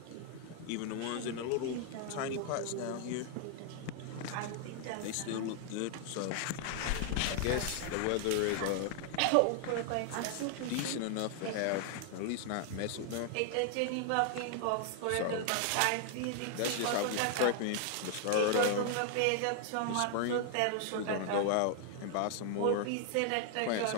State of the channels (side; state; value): both; different; correlation 0.00